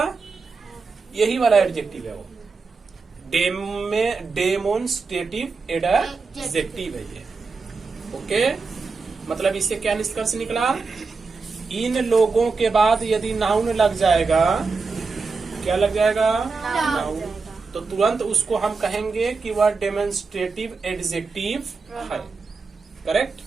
यही वाला एडजेक्टिव है वो, डेमोन्स्ट्रेटिव एडजेक्टिव है ये। ओके, मतलब इससे क्या निष्कर्ष निकला? इन लोगों के बाद यदि नाउन लग जाएगा, क्या लग जाएगा? नाउन। तो तुरंत उसको हम कहेंगे कि वह डेमोन्स्ट्रेटिव एडजेक्टिव है। करेक्ट?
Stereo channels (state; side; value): quieter; left; 4.4 dB